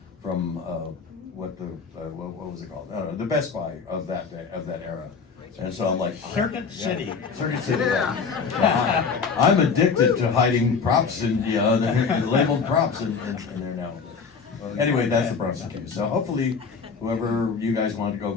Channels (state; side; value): quieter; right; 5.5 dB